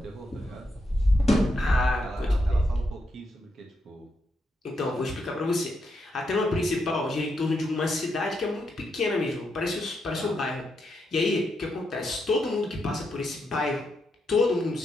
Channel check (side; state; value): both; normal; correlation 0.82